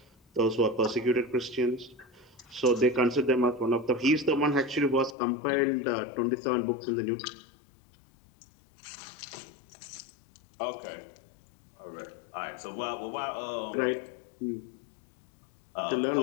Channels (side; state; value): right; drops out; at 5.2 s